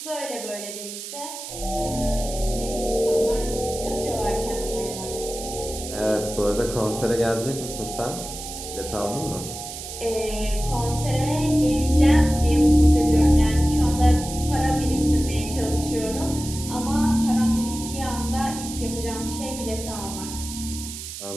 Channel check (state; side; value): noise; right; hiss, 10 dB below the sound